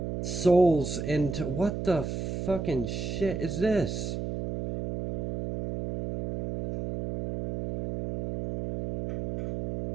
souls into... What the fucking shit is this?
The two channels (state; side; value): noise; right; hum, 2 dB below the sound